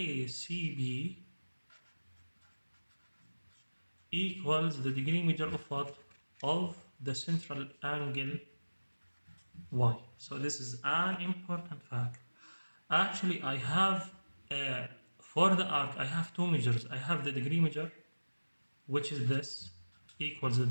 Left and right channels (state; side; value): inverted; both; correlation -1.00